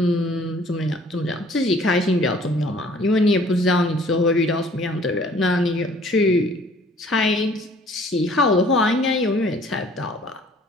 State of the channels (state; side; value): normal; both; correlation 0.56